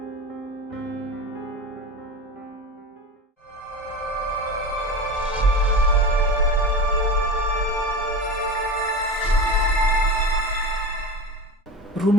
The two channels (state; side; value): normal; both; correlation 0.28